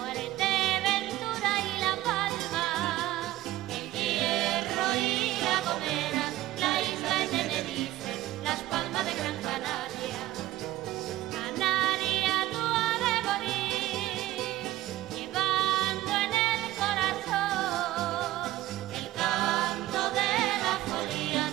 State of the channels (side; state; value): left; quieter; 15.9 dB